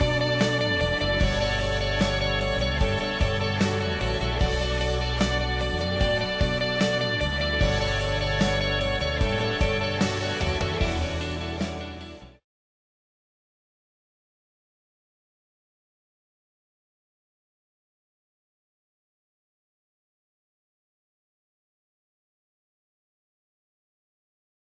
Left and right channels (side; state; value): both; identical; correlation 1.00